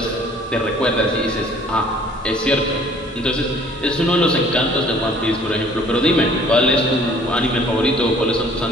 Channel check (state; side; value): normal; both; correlation 0.55